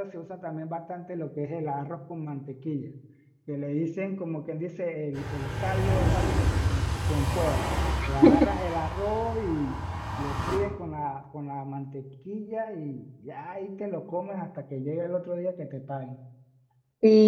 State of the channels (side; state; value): both; identical; correlation 1.00